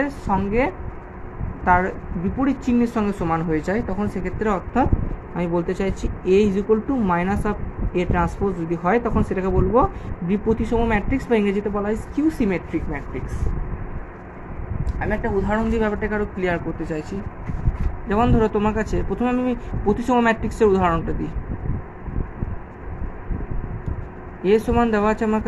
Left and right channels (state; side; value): identical; both; correlation 1.00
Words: সঙ্গে তার বিপরীত চিহ্নের সঙ্গে সমান হয়ে যায়, তখন সেক্ষেত্রে অর্থাৎ আমি বলতে চাইছি A is equal to minus of A transpose যদি হয়, তখন সেটাকে বলবো বিপ্রতিসম ম্যাট্রিক্স বা ইংরেজিতে বলা হয় স্কিউ সিমেট্রিক ম্যাট্রিক্স। আমি একটা উদাহরণ দিয়ে ব্যাপারটাকে আরও ক্লিয়ার করতে চাইছি। যেমন ধরো তোমার কাছে প্রথমে আমি প্রতিসম ম্যাট্রিক্সের উদাহরণটা দিই। এ সমান দেওয়া আছে আমার